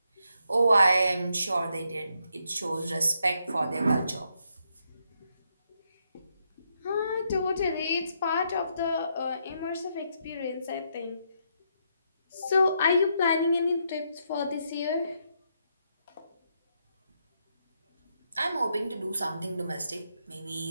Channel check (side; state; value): both; inverted; correlation -0.78